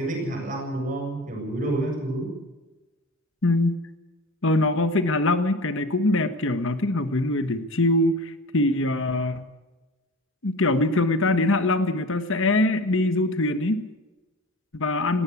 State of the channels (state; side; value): normal; both; correlation 0.35